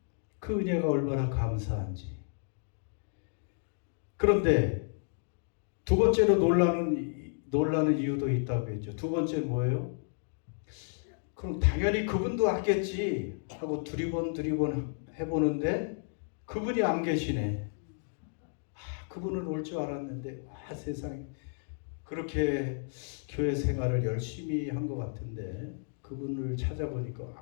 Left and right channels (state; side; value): silent; right; digital silence